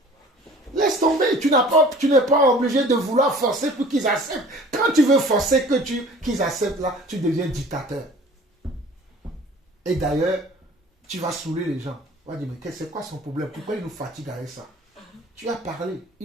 Laisse tomber. Tu n'es pas obligé de vouloir forcer pour qu'ils acceptent. Quand tu veux forcer qu'ils acceptent là, tu deviens dictateur. Et d'ailleurs, tu vas saouler les gens. On va dire, mais c'est quoi son problème? Pourquoi il nous fatigue avec ça? Tu as parlé,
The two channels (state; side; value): normal; both; correlation 0.47